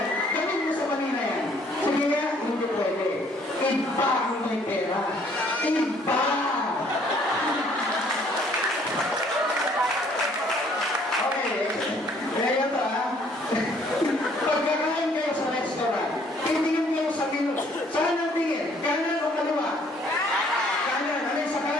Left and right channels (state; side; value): normal; both; correlation 0.61